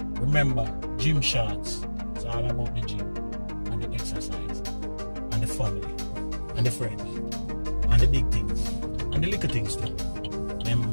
Remember, gym shorts. It's all about the gym and the exercise and the family and the friends and the big things and the little things too.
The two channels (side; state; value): both; inverted; correlation -1.00